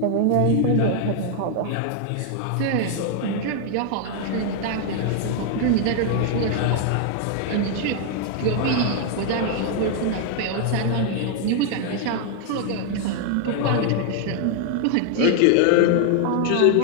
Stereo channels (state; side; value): different; both; correlation 0.00